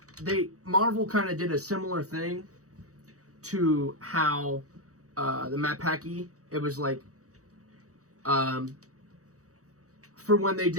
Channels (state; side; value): late; left; 0.65 ms